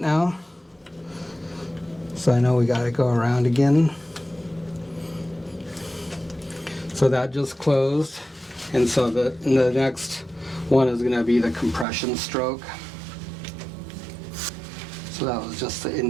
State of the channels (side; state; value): left; drops out; at 11.9 s